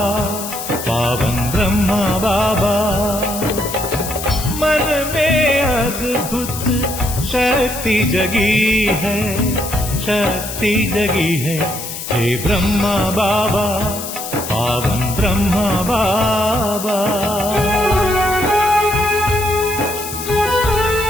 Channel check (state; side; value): noise; left; hiss, 8 dB below the sound